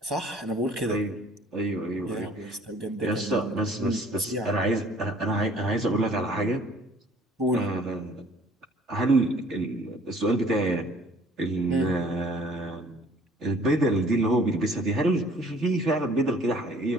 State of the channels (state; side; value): normal; both; correlation 0.55